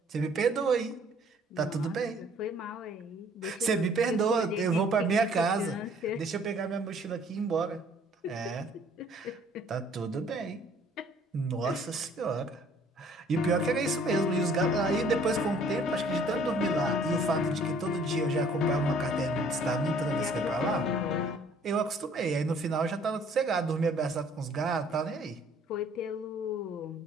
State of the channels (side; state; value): both; normal; correlation 0.57